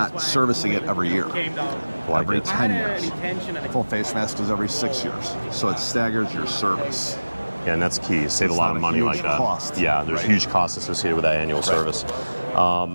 servicing it every year, Like every it. 10 years. Full face mask is every 6 years. So it staggers your service. Yeah, and that's key. Save It's a lot not of a money huge like that. cost. Yeah, there's Right. huge costs associated with that annual service.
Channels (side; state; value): both; inverted; correlation -1.00